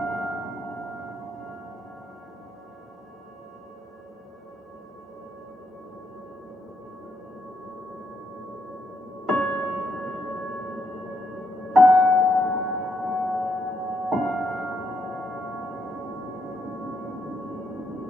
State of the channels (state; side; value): normal; both; correlation 0.78